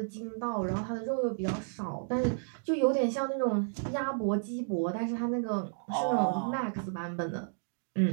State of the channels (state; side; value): silent; left; digital silence